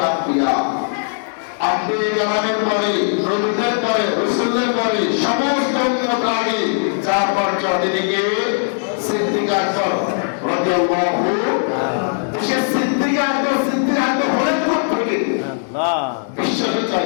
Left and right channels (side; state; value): right; silent; 67 dB below the other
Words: আম্বিয়া, আম্বিয়া কেরামের পরে, নবীদের পরে, রাসূলের পরে সমস্ত উম্মত আগে যার পর্যায়ে তিনি কে? সিদ্দিক আকবর রাদিয়াল্লাহু আনহু। সে সিদ্দিক আকবর হলেন কোথা থেকে? বিশ্বাসের